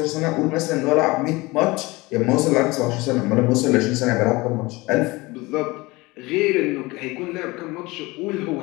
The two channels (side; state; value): right; quieter; 22.3 dB